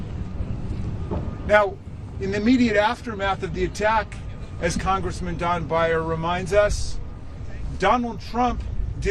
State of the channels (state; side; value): identical; both; correlation 1.00